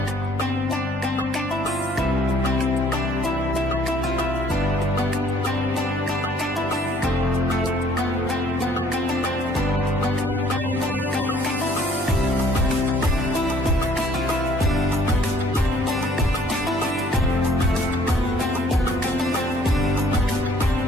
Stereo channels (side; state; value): both; normal; correlation 0.59